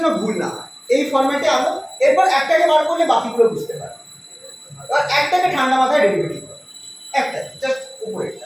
ভুল না হয়, এই ফরম্যাটে আনো। এরপর একটাকে বার করলে বাকিগুলো বুঝতে পারবে। আর একটাকে ঠান্ডা মাথায় ডেরিভেটিভ করো, একটা জাস্ট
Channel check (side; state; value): both; identical; correlation 1.00